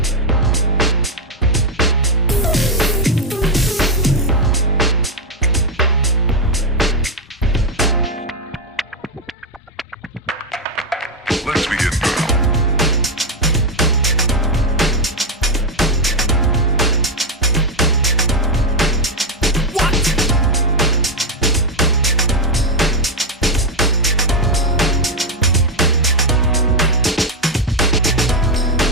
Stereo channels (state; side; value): normal; both; correlation 0.04